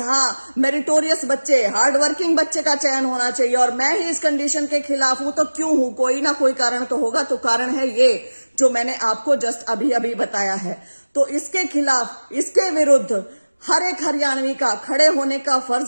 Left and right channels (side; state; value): both; inverted; correlation -1.00